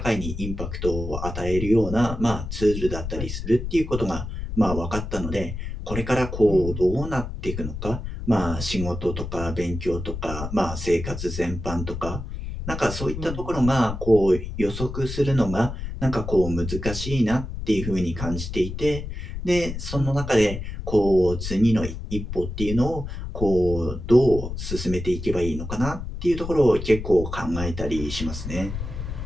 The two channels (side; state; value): left; noise; rumble, 7 dB below the sound